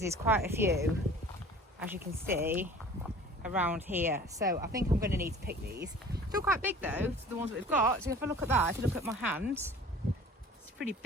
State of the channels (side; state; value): both; normal; correlation 0.45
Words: there's quite a few, as you can see, around here. So I think I'm going to need to pick these. Still quite big though, the ones that we've got. So if I look at that, if you look at my hands, it's pretty